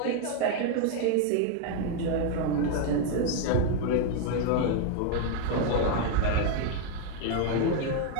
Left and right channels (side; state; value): both; different; correlation 0.00